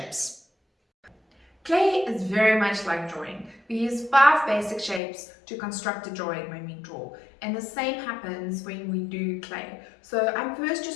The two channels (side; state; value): right; drops out; at 5.0 s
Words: Clay is very much like drawing. We use 5 basic shapes to construct a drawing when we draw, and the same happens when we do clay. So I'm first